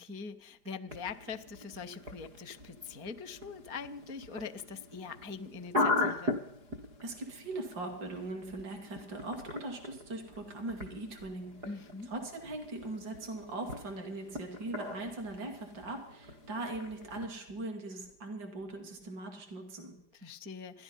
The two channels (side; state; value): left; late; 5.0 ms